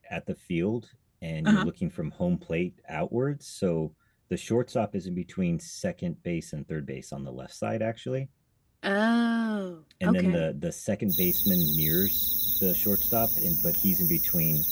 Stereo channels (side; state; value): both; identical; correlation 1.00